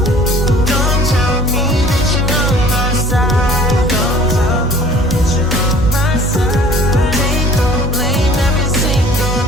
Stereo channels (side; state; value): both; normal; correlation 0.50